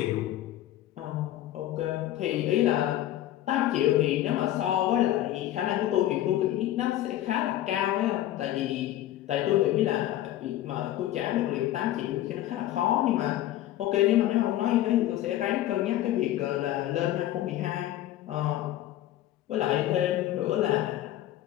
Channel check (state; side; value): quieter; right; 13.6 dB